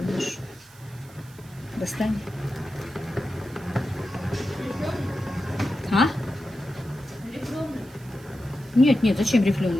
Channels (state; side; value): noise; right; hiss, 24 dB below the sound